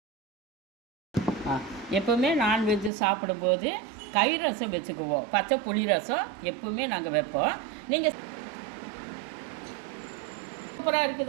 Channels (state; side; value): drops out; left; at 2.9 s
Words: எப்போவுமே நான்வெஜ்ஜு சாப்பிடும்போது கறி ரசம் வச்சுக்குவோம். பச்சை புளி ரசம் எப்போவுமே நாங்கள் வைப்போம். நீங்கள் சூப்பராக